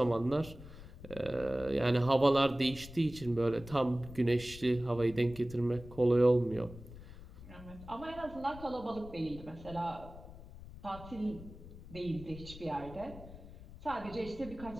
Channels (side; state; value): left; noise; rumble, 15 dB below the sound